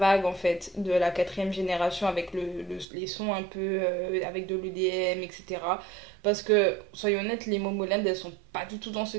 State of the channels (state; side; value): drops out; left; at 2.9 s